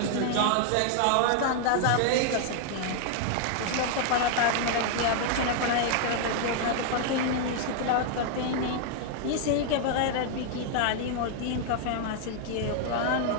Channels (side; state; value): both; different; correlation 0.00